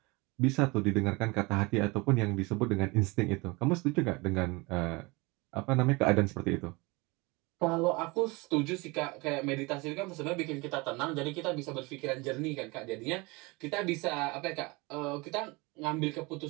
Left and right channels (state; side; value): quieter; left; 25.4 dB